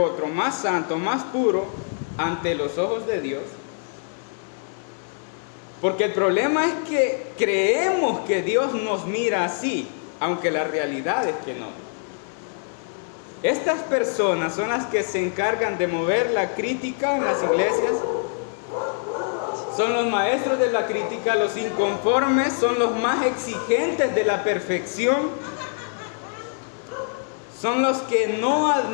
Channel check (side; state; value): right; silent; 62 dB below the other